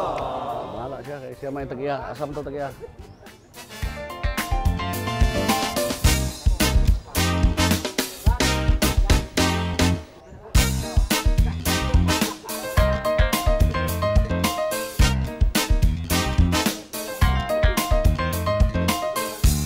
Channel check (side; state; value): both; identical; correlation 1.00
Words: siya, kaya siya may tagiya. Asam to tagiya.